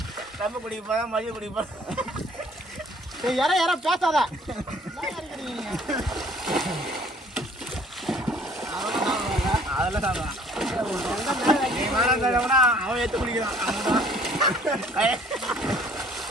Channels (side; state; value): both; normal; correlation 0.56